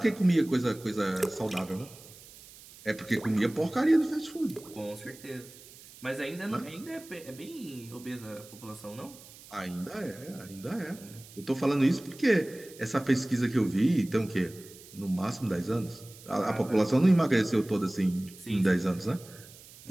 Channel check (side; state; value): right; noise; hiss, 20 dB below the sound